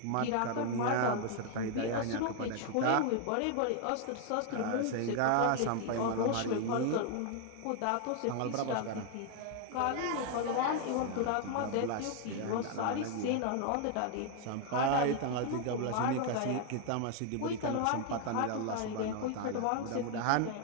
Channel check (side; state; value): both; different; correlation 0.00